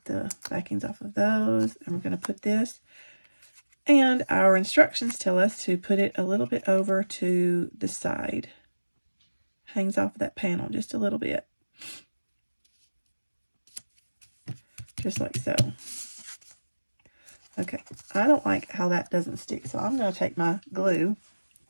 the backings off of those, and we're going to put this. And our instructions tell us to put it a little bit over to the side. Hangs off of that panel just a little bit. Just like so. Okay, I don't like how that doesn't stick, so I'm going to take my glue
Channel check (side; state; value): both; inverted; correlation -1.00